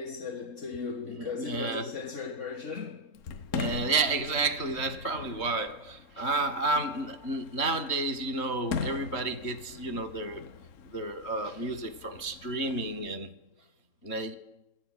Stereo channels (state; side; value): late; right; 3.7 ms